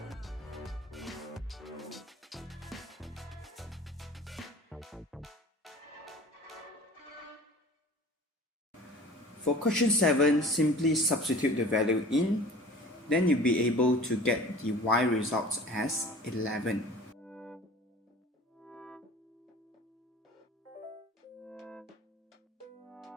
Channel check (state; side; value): normal; both; correlation 0.43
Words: For question 7, simply substitute the value in, then you'll be able to get the y results as 11.